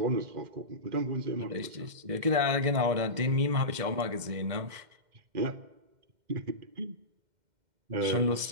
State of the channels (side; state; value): left; late; 2.1 ms